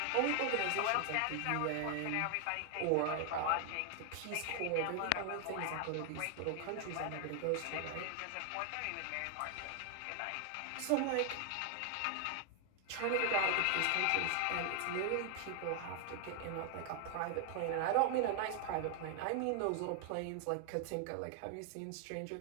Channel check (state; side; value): different; both; correlation 0.00